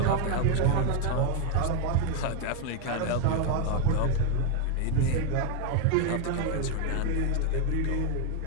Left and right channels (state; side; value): different; both; correlation 0.01